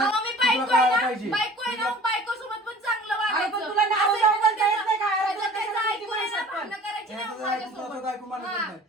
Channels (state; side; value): normal; both; correlation 0.46